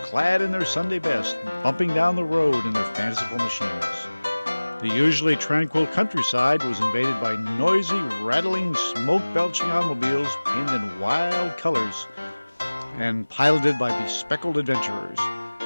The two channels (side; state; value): both; inverted; correlation -1.00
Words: clad in their Sunday best, bumping down the road in their fanciful machines. The usually tranquil countryside was invaded by noisy, rattling, smoke-belching automobiles painted in wild colors and piloted by bespectacled adventurers.